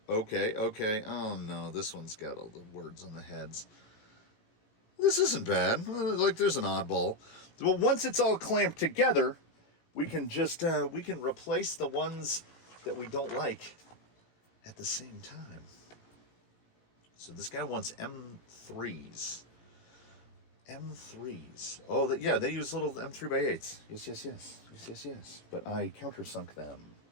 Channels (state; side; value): late; right; 17 ms